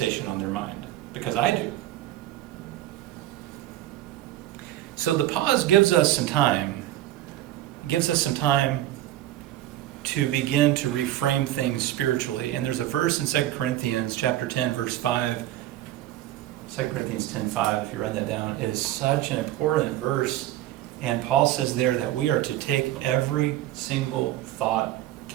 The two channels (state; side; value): quieter; left; 14.0 dB